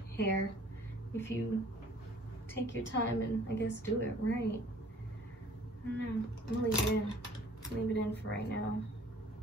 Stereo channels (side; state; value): both; normal; correlation 0.54